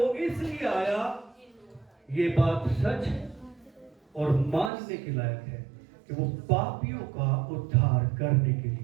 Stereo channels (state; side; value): drops out; left; at 4.7 s